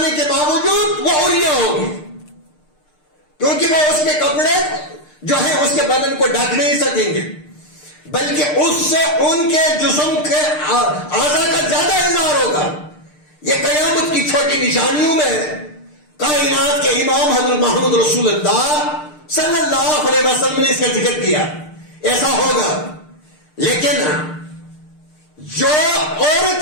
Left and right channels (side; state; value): right; late; 6.6 ms